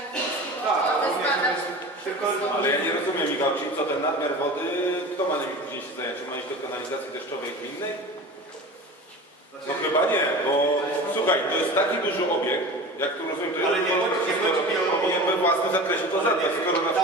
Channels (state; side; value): normal; both; correlation 0.34